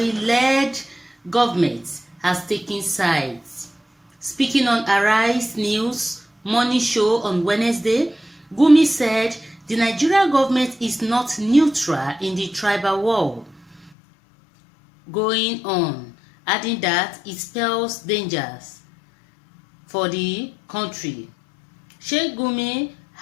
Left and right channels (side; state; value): right; drops out; at 13.9 s